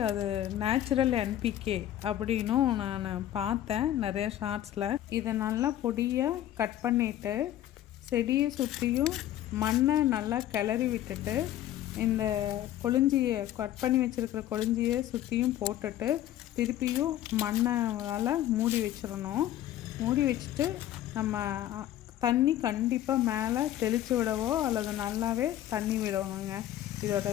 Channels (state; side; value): quieter; right; 12.6 dB